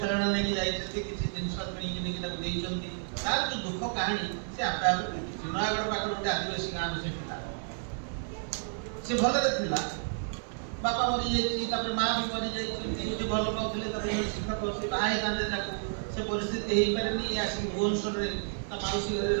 ନେଇକି ଯାଇଛନ୍ତି, କିଛି ଜିନିଷ କିଣିକି ନେଇକି ତାକୁ ଦେଇଛନ୍ତି। ତାର ଯୋଉ ଦୁଃଖ କାହାଣୀ ସେ ଆପେ ଆପେ ବୁଝୁଛି। ନୟାଗଡ଼ ପାଖରେ ଗୋଟେ ଆଦିବାସୀ ଗାଁର ସେ ପିଲା, ସେ ଭଲରେ ଥିଲା, ବାପା ମରିଯାଇଛି, ତାପରେ ମା ବି ମରିଯାଇଛନ୍ତି, ଗୋଟେ ଭଲ ପାଉଥିଲେ ତାର ଶିକ୍ଷକ, ସେ ବାହା ହେଇଥାନ୍ତେ, ତାକୁ ସେ ପରିସ୍ଥିତି ହେଇପାରେନି। ଇଏ ଆସିକି ଭୁବନେଶ୍ୱରରେ ତା ମାଉସୀ ଘରେ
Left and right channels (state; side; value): silent; left; 57 dB below the other